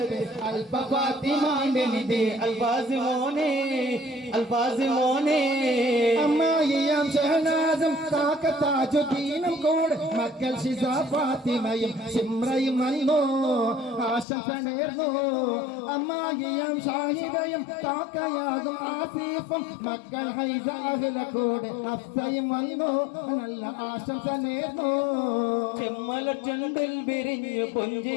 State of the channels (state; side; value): drops out; right; at 14.2 s